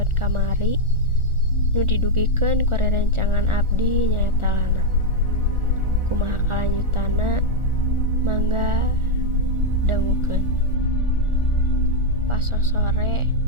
kamari nu didugikeun ku rerencangan abdi nyaeta Lana. Kumaha kalanjutana mangga dangukeun. Pas sore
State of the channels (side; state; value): left; late; 1.4 ms